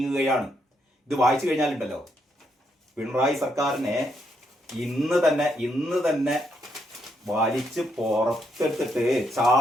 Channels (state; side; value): normal; both; correlation 0.77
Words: ഇത് വായിച്ചു കഴിഞ്ഞാലുണ്ടല്ലോ, പിണറായി സർക്കാരിനെ ഇന്ന് തന്നെ വലിച്ച് പുറത്തെടുത്തിട്ട്